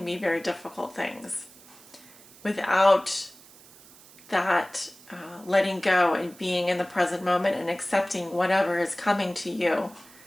be very difficult things. Without that letting go and being in the present moment and accepting whatever is coming to you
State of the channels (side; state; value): right; noise; hiss, 23 dB below the sound